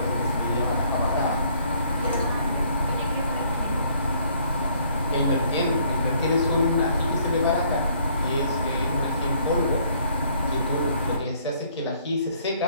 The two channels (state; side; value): inverted; both; correlation -0.64